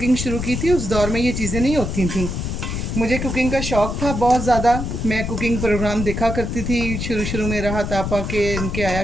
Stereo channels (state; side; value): noise; left; rumble, 3 dB below the sound